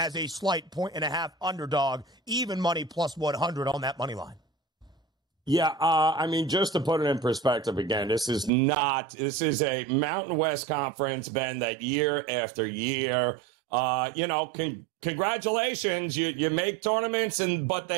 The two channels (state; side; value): drops out; left; at 8.5 s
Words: a slight 1.5 underdog, even money plus 100 on that money line. Yeah, just to put it in perspective again, this is a Mountain West Conference, Ben, that year after year, congratulations, you make tournaments, but